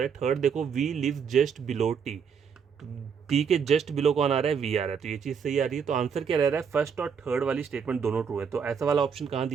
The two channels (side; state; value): left; quieter; 6.7 dB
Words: है। थर्ड देखो V lives just below T, T के जस्ट बिलो कौन आ रहा है, वी आ रहा है, तो ये चीज़ सही आ रही है। तो आंसर क्या रह रहा है, फर्स्ट और थर्ड वाली स्टेटमेंट दोनों ट्रू है। तो ऐसा वाला ऑप्शन कहाँ